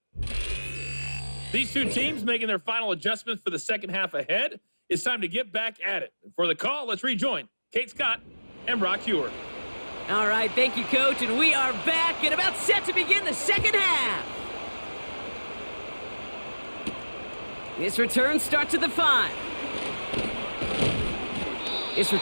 These two teams making their final adjustments for the second half ahead. It's time to get back at it. For the call, let's rejoin Kate Scott and Brock Hewer. All right, thank you, Coach, and we are back and about set to begin the second half. This return starts at the 5. This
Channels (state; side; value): inverted; both; correlation -1.00